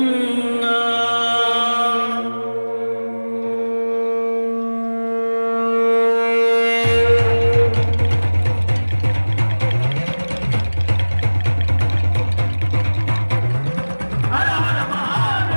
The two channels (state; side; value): inverted; both; correlation -1.00